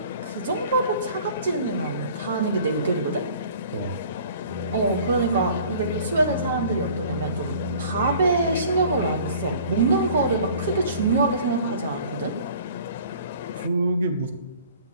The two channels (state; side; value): inverted; both; correlation -0.49